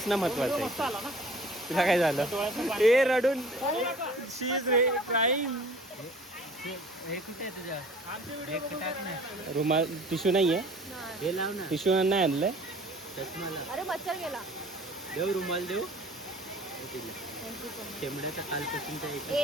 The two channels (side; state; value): both; normal; correlation 0.48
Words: महत्वाचं आहे. तुला काय झालं? ए रडून शी इज क्राईम. हे कुठे आहे तुझ्या? हे टाक ना. रुमाल टिश्यू नाहीये. हे लाव ना. टिश्यू नाही आणलंय. चष्माला अरे मच्छर गेला. देऊ रुमाल देऊ. शेंबड्याचं कालपासूनच्या